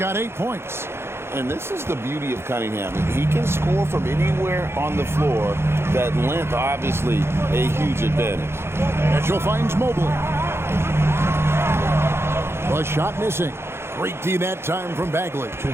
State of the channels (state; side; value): late; left; 0.12 ms